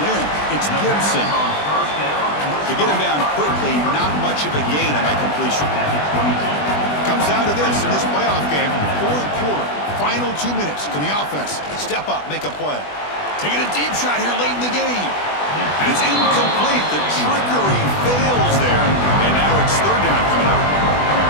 in. It's Gibson. To get him down quickly, not much of a gain on that completion. Comes down to this in this playoff game. 4th quarter, final 2 minutes. Can the offense step up, make a play? Taking a deep shot here late in the game. And it's incomplete. The trickery fails there. And now it's 3rd down coming up.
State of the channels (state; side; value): late; right; 20 ms